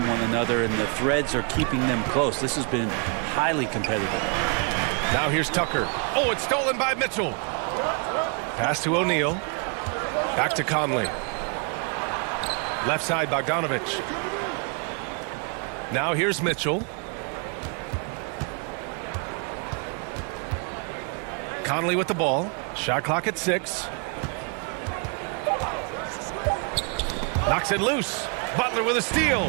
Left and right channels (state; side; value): quieter; left; 38.4 dB